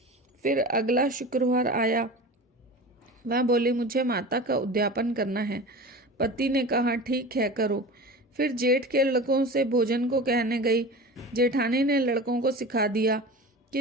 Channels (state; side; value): normal; both; correlation 0.33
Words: फिर अगला शुक्रवार आया। वह बोली, मुझे माता का उद्यापन करना है। पति ने कहा, ठीक है, करो। फिर जेठ के लड़कों से भोजन को कहने गई। जेठानी ने लड़कों को सिखा दिया